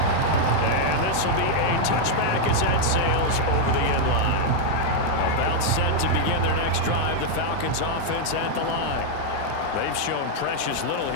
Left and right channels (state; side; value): different; both; correlation 0.00